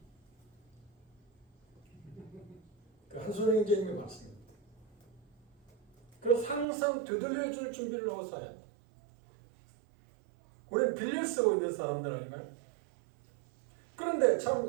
그 한손 형제님의 말씀입니다. 그래서 항상 되돌려줄 준비를 하고 살아야 돼. 우리는 빌려 쓰고 있는 사람들 아닌가요? 그런데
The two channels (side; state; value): left; drops out; at 6.7 s